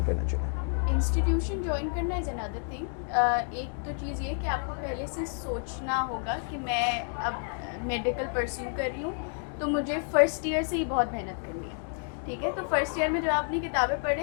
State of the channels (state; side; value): silent; right; 58 dB below the other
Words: करना चाहिए? इंस्टीट्यूशन ज्वाइन करना इज़ अनदर थिंग। एक तो चीज़ ये कि आपको पहले से सोचना होगा कि मैं अब मेडिकल परस्यू कर रही हूँ, तो मुझे फ़र्स्ट ईयर से ही बहुत मेहनत करनी है, ठीक है। तो फर्स्ट ईयर में जब आप अपनी किताबें